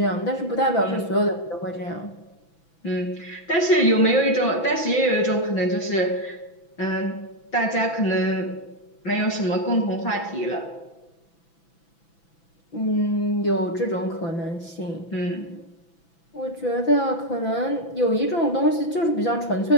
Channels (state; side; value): late; right; 6.0 ms